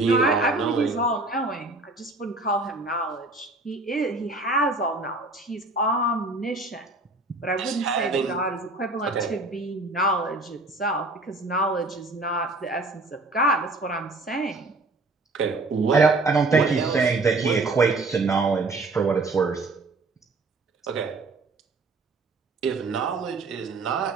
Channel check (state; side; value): quieter; left; 3.2 dB